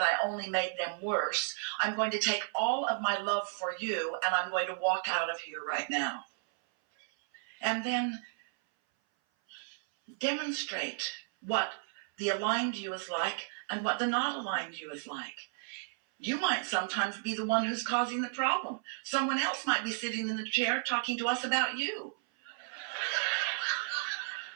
I only made them worse, I'm going to take all of my love for you and I'm going to walk out of here right now. And then demonstrate what the aligned you is like and what the not aligned you is like. You might sometimes be the one who's causing the problem. Someone else might be sitting in the chair talking to us about you.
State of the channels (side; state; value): left; silent; 56 dB below the other